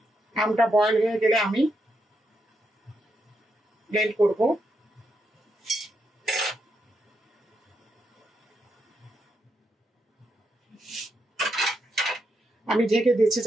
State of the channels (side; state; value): both; normal; correlation 0.82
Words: আমটা বয়ল হয়ে গেলে আমি ব্লেন্ড করব। আমি ঢেকে দিচ্ছি